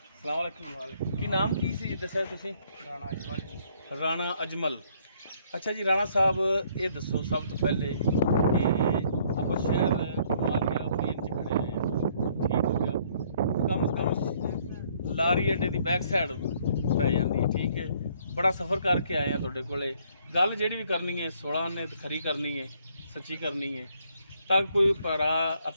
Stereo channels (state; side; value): inverted; both; correlation -0.64